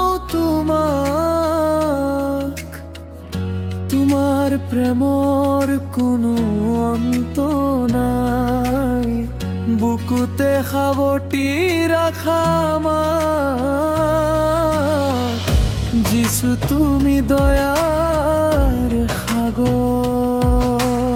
তোমার প্রেমৰ কোনো অন্ত নাই। বুকুতে সাৱটি ৰাখা আমাক, যিছু তুমি দয়াৰ সাগৰ।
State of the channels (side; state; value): both; identical; correlation 1.00